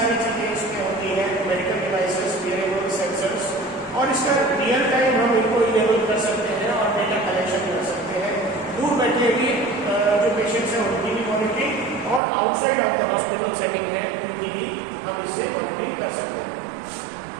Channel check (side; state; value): left; drops out; at 12.2 s